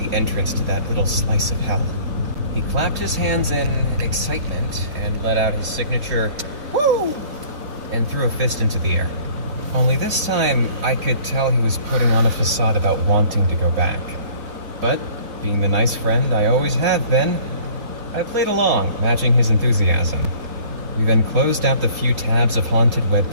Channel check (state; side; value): late; left; 3.8 ms